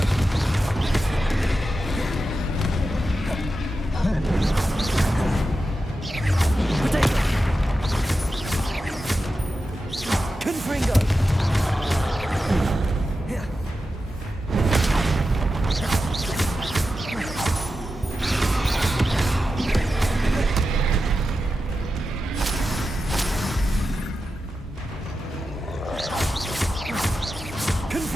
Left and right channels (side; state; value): both; normal; correlation 0.91